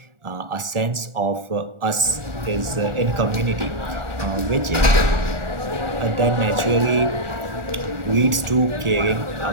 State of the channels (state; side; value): late; left; 1.4 ms